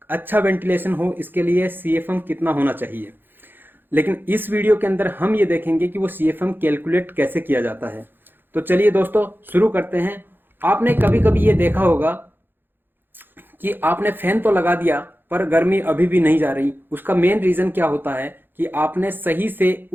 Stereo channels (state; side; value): late; left; 0.098 ms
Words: अच्छा वेंटिलेशन हो, इसके लिए CFM कितना होना चाहिए। लेकिन इस वीडियो के अंदर हम ये देखेंगे कि वो CFM कैलकुलेट कैसे किया जाता है। तो चलिए दोस्तों शुरू करते हैं। आपने कभी कभी ये देखा होगा कि आपने फैन तो लगा दिया पर गर्मी अभी भी नहीं जा रही। उसका मेन रीजन क्या होता है कि आपने सही से